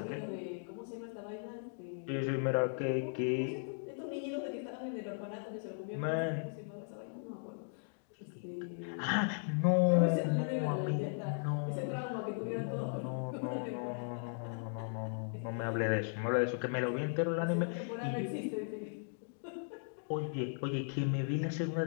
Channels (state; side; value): silent; right; digital silence